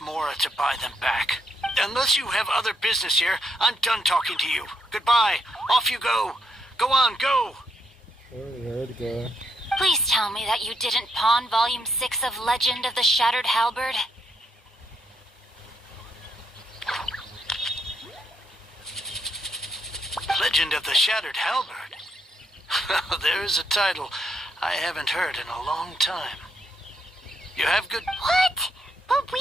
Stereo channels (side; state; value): both; normal; correlation 0.75